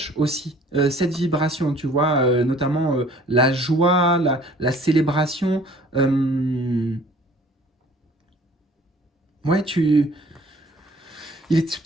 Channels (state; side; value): normal; both; correlation 0.53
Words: aussi cette vibration, tu vois, notamment la joie, la célébration. euh, ouais, il est